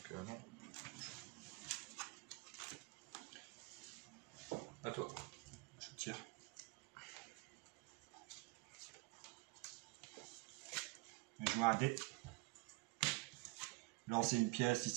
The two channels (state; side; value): quieter; left; 24.5 dB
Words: non. À toi. Je tire. Je joue un dé. Lancer une pièce, si